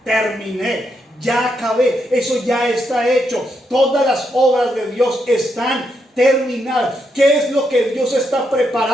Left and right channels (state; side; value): normal; both; correlation 0.80